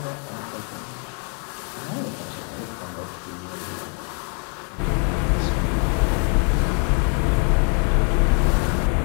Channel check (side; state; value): right; quieter; 39.3 dB